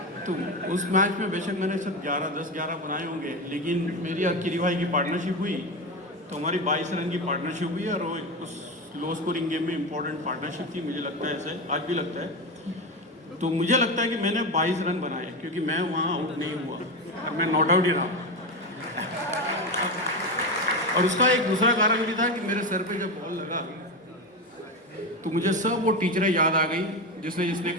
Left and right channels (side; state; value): both; normal; correlation 0.18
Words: तो उस मैच में बेशक मैंने सब 10-11 बनाए होंगे, लेकिन मेरी किरी भाई की पार्टनरशिप हुई तो हमारी 22 रन की पार्टनरशिप हुई और उस लो स्कोरिंग गेम में इंपॉर्टेंट पार्टनरशिप थी. मुझे लगता है ऐसे आज भी लगता है. तो मुझे लगता है कि मैंने 22 रन बनाए क्योंकि मैं वहाँ आउट नहीं हुआ और मैं नॉट आउट ही रहा. और उसका एक दूसरा कारण भी था कि मेरे सर पे जब बॉल लगा तो मुझे सब वो टीचरें याद आ गई जिसने